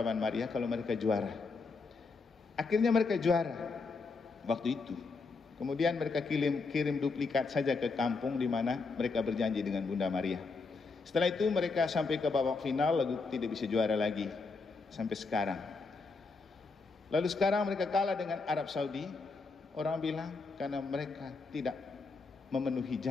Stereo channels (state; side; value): quieter; right; 4.2 dB